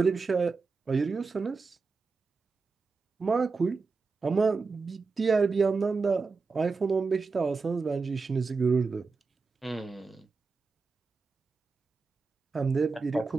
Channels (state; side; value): quieter; left; 4.4 dB